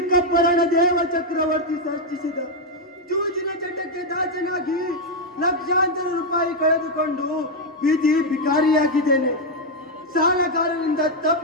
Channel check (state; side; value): normal; both; correlation 0.01